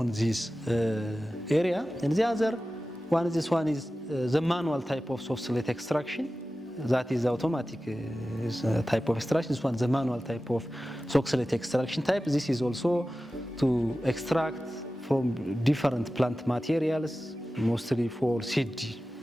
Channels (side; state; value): both; normal; correlation 0.95